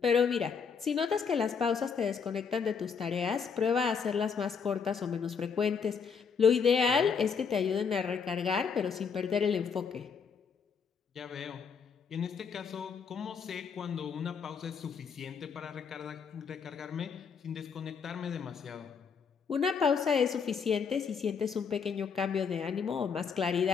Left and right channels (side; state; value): right; quieter; 6.1 dB